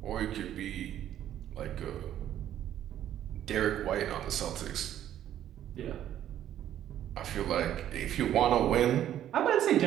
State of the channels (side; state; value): left; quieter; 11.4 dB